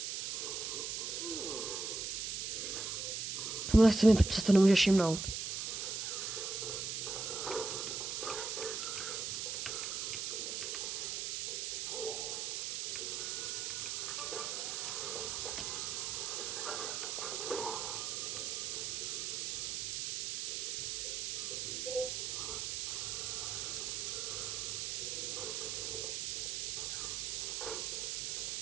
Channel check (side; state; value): right; noise; hiss, 2 dB below the sound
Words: Tohle se mi přesto nemůžeš všimnout.